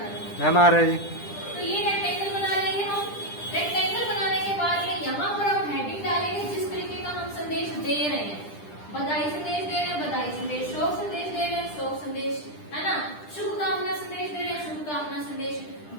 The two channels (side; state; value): right; late; 10 ms